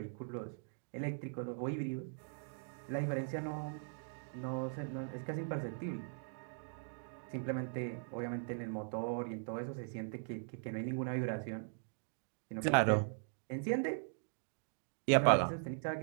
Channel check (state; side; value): silent; left; digital silence